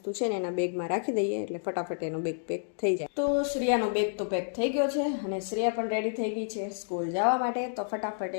છે ને એના બેગમાં રાખી દઈએ એટલે ફટાફટ એનો બેગ પેક થઈ જાય. તો શ્રેયાનો બેગ તો પેક થઈ ગયો છે, અને શ્રેયા પણ રેડી થઈ ગઈ છે સ્કૂલ જવા માટે. તો ફટાફટ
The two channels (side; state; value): right; silent; digital silence